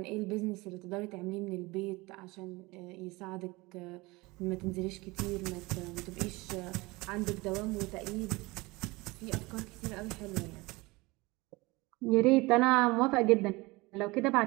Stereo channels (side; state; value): left; quieter; 22.9 dB